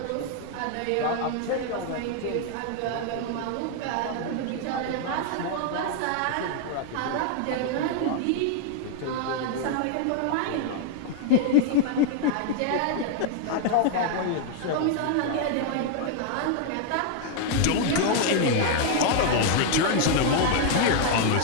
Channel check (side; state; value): both; different; correlation 0.00